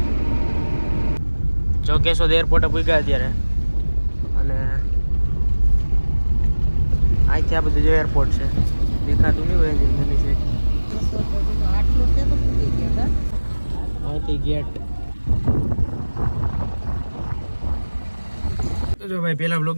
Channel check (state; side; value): inverted; both; correlation -1.00